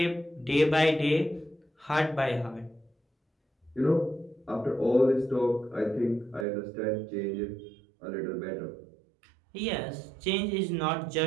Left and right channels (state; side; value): drops out; left; at 6.5 s